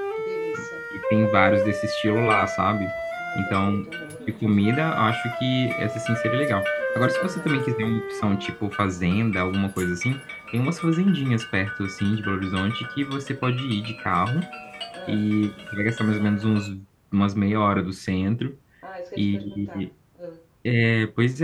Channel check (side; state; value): both; identical; correlation 1.00